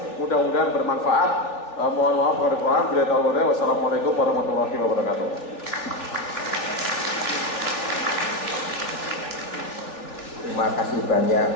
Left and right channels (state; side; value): late; right; 3.4 ms